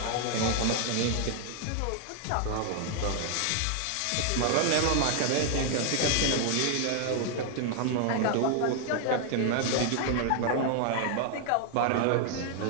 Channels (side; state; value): both; different; correlation 0.00